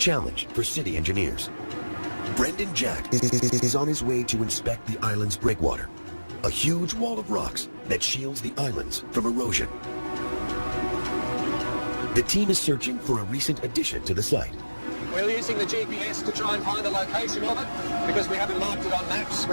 for city engineers. Brendan Jack is on his way to inspect the island's breakwater, a huge wall of rocks that shields the islands from erosion. The team is searching for a recent addition to the site. We're using the GPS to try and find the location of it. Because we haven't marked it on maps,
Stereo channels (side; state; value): both; inverted; correlation -1.00